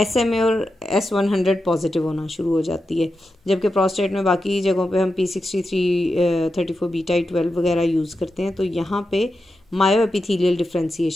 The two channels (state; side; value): normal; both; correlation 0.89